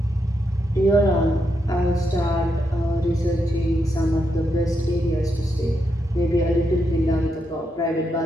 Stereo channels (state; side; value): normal; both; correlation 0.82